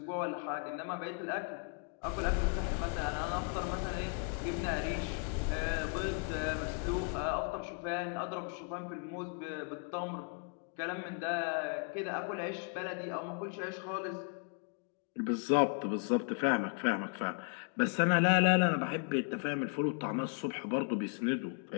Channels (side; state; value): right; quieter; 39.9 dB